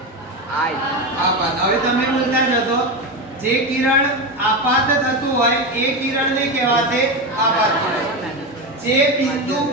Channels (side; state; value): both; normal; correlation 0.16